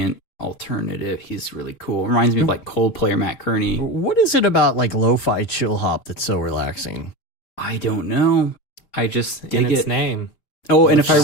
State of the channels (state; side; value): late; right; 4.2 ms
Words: alternative. He's really cool. Reminds me of like Coldplay or Matt Kearney. What is it about like lo-fi chill hop that's so relaxing? I don't know. I just In dig its it. name. Oh, and if